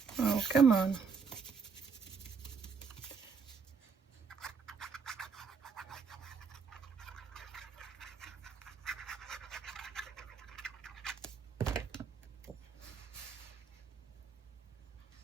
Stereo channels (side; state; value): left; quieter; 5.6 dB